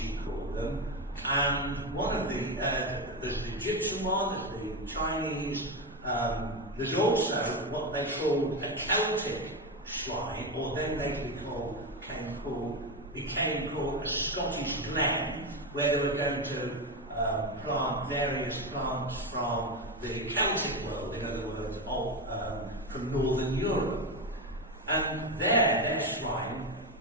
called them, and one of there's the Egyptian one, there's the Chinese, there's also what they called a Celtic shrine, or then later became called a Scottish glen, where they were going to plant various plants from the Celtic world, in other words, from Northern Europe. And their shrine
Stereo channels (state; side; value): normal; both; correlation 0.14